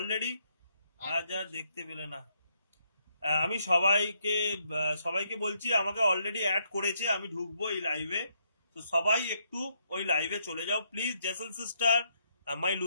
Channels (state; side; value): inverted; both; correlation -0.75